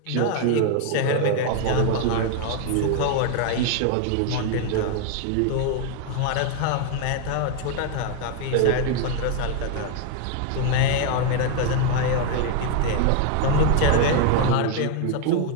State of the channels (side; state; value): both; different; correlation 0.01